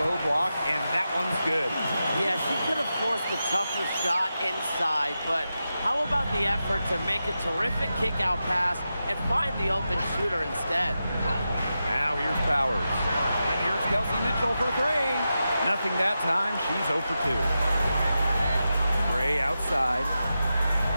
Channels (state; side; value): inverted; both; correlation -0.90